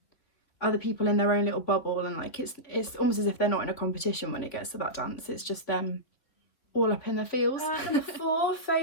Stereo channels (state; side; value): late; right; 3.5 ms